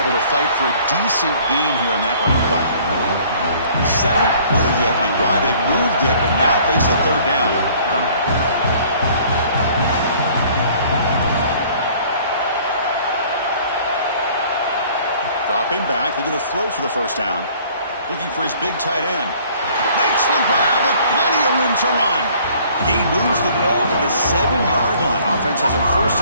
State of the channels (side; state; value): both; inverted; correlation -0.55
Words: to fight for a decent gain here in that running play. 7th play of the opening drive. They've moved it, but now face a third down. Dropping back, looking to throw for the first down. Looking for his big tight end. Makes the grab with plenty of room to run. He moves the ball to the 7-yard line. Offense has a